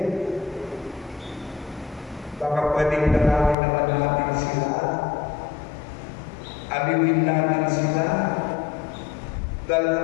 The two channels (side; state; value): right; drops out; at 3.6 s